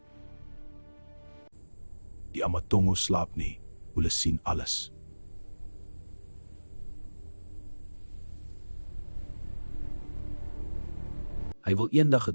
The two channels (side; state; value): both; inverted; correlation -1.00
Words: Die Amatongo slaap nie, hulle sien alles. Hy wil eendag